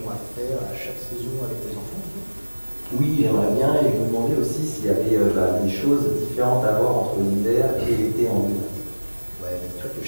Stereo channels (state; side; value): inverted; both; correlation -1.00